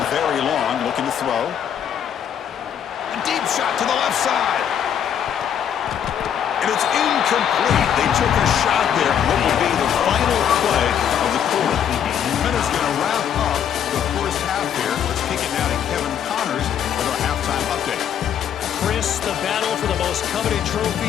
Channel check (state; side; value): quieter; right; 9.0 dB